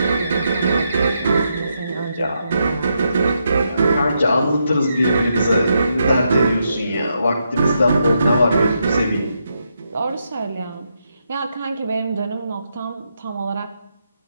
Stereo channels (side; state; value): both; inverted; correlation -0.81